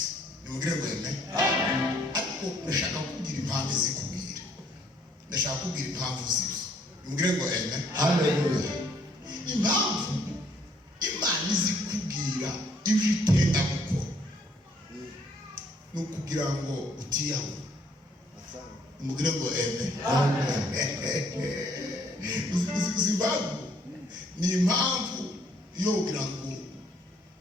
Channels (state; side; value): normal; both; correlation 0.65